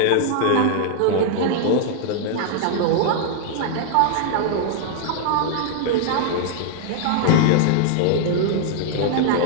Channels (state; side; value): different; both; correlation 0.00